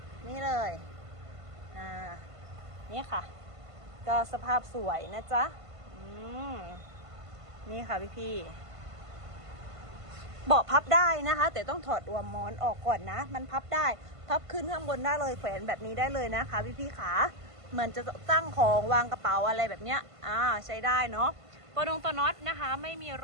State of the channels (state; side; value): late; left; 1.5 ms